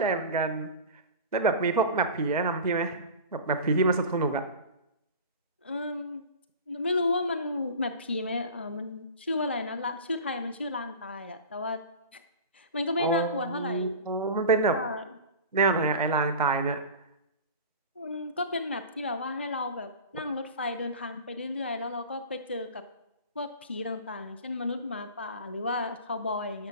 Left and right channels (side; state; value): both; inverted; correlation -0.34